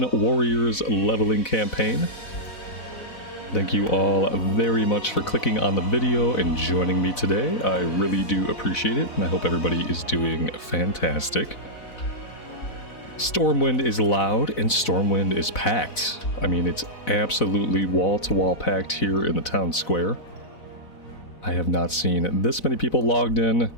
Warriors leveling campaign. Thank you all very much for clicking on the video and joining me today. I really do appreciate it, and I hope everybody is doing fantastic. Stormwind is loud and Stormwind is packed. I mean, it's absolutely wall-to-wall packed here in the town square. I have not seen this many people logged in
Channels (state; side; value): late; right; 4.0 ms